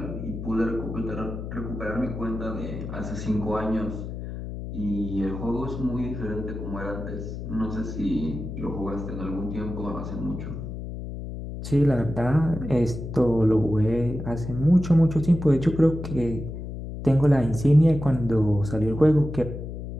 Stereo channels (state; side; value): noise; left; hum, 8 dB below the sound